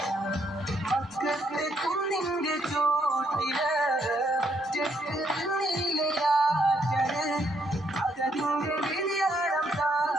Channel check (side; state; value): both; normal; correlation 0.73